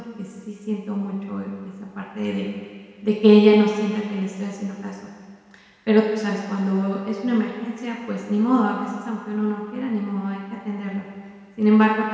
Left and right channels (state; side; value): identical; both; correlation 1.00